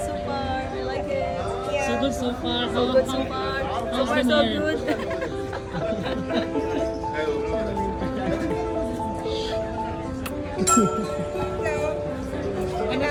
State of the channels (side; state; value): both; identical; correlation 1.00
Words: so far. I like it. So good so far. So good so far. So how's far the so nerve? good. Ano